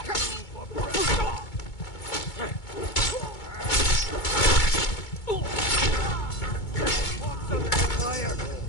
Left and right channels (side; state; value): right; late; 2.2 ms